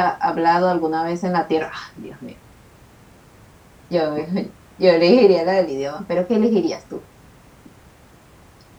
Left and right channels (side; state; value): both; identical; correlation 1.00